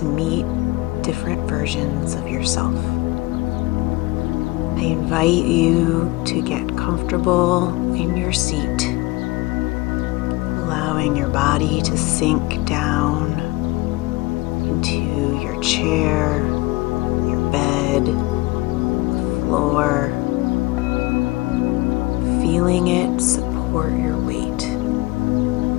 meet different versions of yourself. I invite you to get comfortable in your seat, allowing your body to sink down into your chair, your bed, the floor, feeling it support your weight.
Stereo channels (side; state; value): right; quieter; 21.3 dB